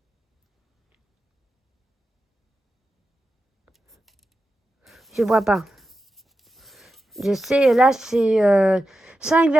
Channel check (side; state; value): both; normal; correlation 0.90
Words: je vois pas. Je sais, là, c'est